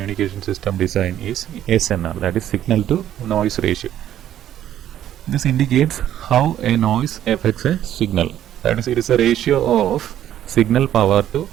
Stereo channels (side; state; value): left; quieter; 11.4 dB